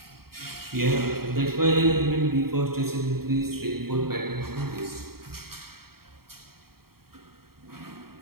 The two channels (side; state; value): left; late; 0.94 ms